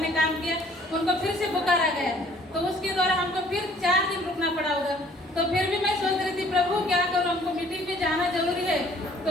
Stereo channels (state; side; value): normal; both; correlation 0.57